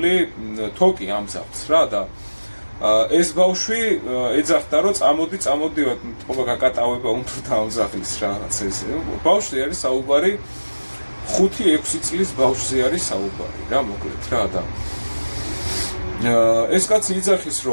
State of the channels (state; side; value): inverted; both; correlation -1.00